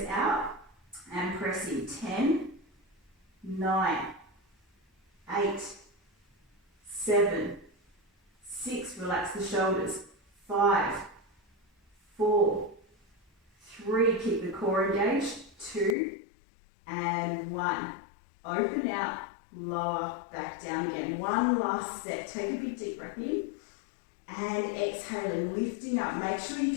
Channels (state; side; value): drops out; right; at 16.0 s